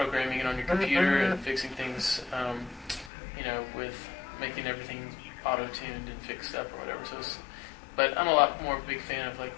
it on your computer and fixing things, with making everything auto-tuned and fixed up or whatever. But I'm a lot more of a big fan of like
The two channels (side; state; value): right; drops out; at 3.1 s